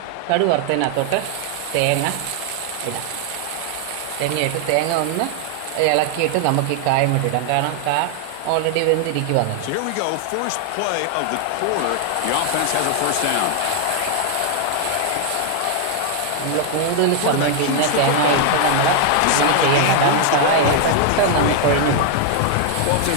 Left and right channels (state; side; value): different; both; correlation 0.00